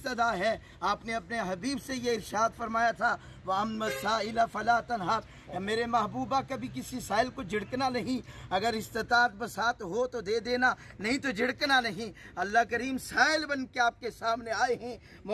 है, आपने अपने हबीब से ये इरशाद फरमाया था वअम्मा साइला फला तनहर, मेरे महबूबा कभी किसी साइल को झिड़कना नहीं, अगर इस्तात बसात हो तो दे देना नहीं तो झिड़कना नहीं। अल्लाह करीम साइल बन के आपके सामने आए हैं,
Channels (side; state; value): both; identical; correlation 1.00